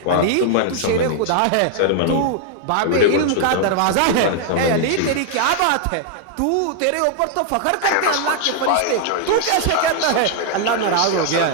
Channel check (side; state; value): both; different; correlation 0.00